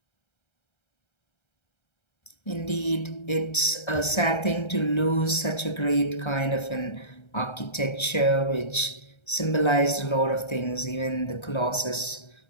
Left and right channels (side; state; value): right; late; 1.3 ms